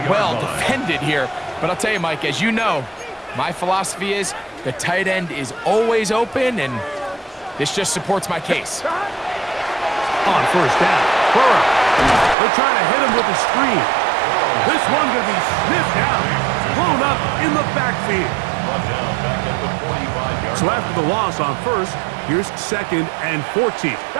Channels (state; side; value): drops out; left; at 12.4 s